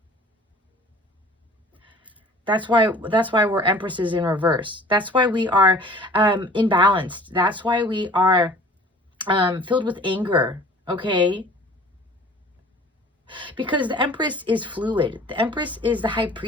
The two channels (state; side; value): normal; both; correlation 0.47